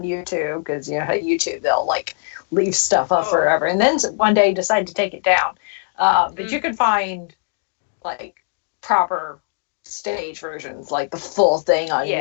YouTube, because YouTube they'll like leave stuff up forever and then one day decide to take it down. But you can find like proper stage versions, like the full thing on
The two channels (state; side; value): silent; right; digital silence